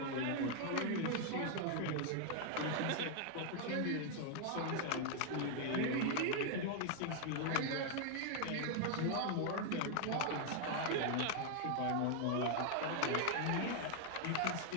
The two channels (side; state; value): both; different; correlation 0.00